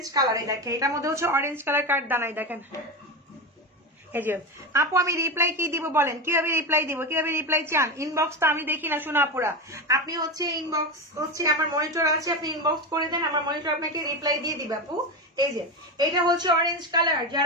কালার, এই দেখেন এটার মধ্যে হচ্ছে অরেঞ্জ কালার কার্ড দানাই দেখেন। এই যে আপু আমি রিপ্লাই কি দিব বলেন, কিভাবে রিপ্লাই দিব, কিভাবে রিপ্লাই চান? ইনবক্স তো আমি দেখি না শোনা আপুরা, আপনি হচ্ছে ইনবক্স হচ্ছে আমার মনিটর আছে, আপনি ইনবক্স করে দেন, আমার মনিটর আপনাকে রিপ্লাই দিয়ে দিবে আপু। এই যে এটা হচ্ছে অরেঞ্জ কালার,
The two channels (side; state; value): both; normal; correlation 0.18